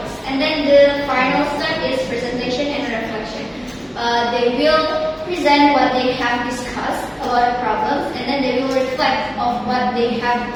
And then the final step is presentation and reflection. They will present what they have discussed about the problems, and then they will reflect on what they have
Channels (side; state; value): both; identical; correlation 1.00